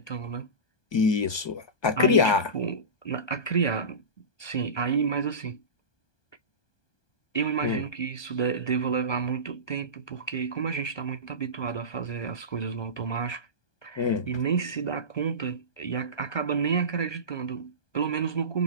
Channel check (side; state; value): right; late; 1.2 ms